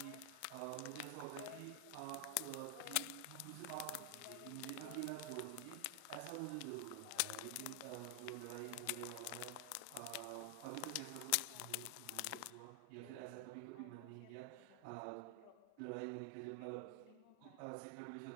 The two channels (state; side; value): different; both; correlation 0.00